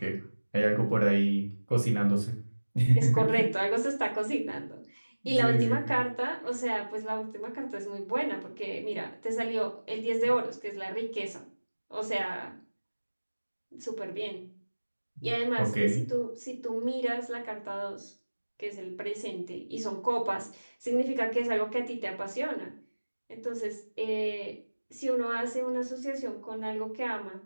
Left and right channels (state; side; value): inverted; both; correlation -1.00